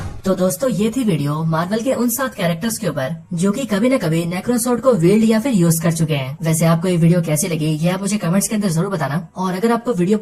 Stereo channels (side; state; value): both; identical; correlation 1.00